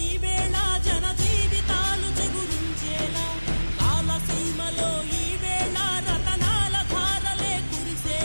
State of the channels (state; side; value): inverted; both; correlation -1.00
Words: వేళ జన జీవితాలు చెగురించేలా కాలసీమలో ఈ వేళ రతనాల ధారలే